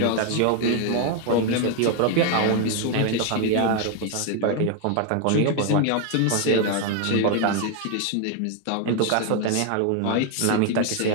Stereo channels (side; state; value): both; different; correlation 0.01